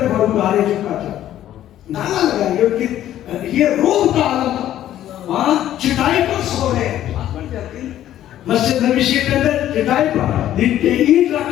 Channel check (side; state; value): right; quieter; 12.3 dB